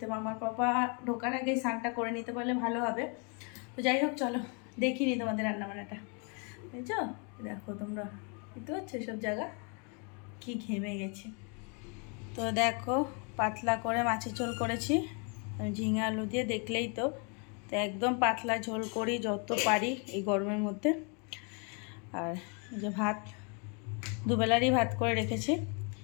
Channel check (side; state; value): right; quieter; 35.9 dB